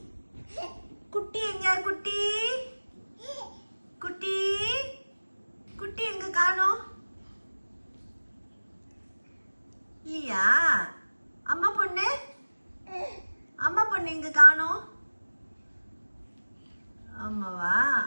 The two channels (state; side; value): inverted; both; correlation -1.00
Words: குட்டி எங்க? குட்டி குட்டி குட்டி எங்க காணோம்? இல்லையா? அம்மா பொண்ணு அம்மா பொண்ணு எங்க காணோம்? ஆமாவா?